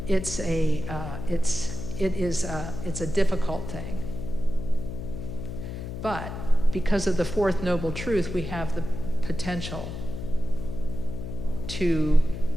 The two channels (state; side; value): noise; left; hum, 7 dB below the sound